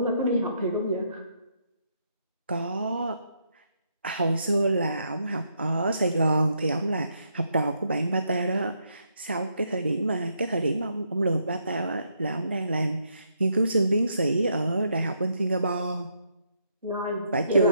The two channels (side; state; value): both; inverted; correlation -0.76